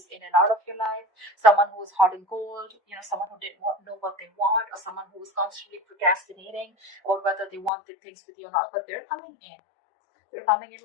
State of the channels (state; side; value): drops out; right; at 7.7 s